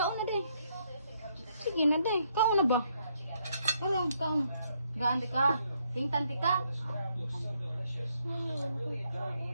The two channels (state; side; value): inverted; both; correlation -0.73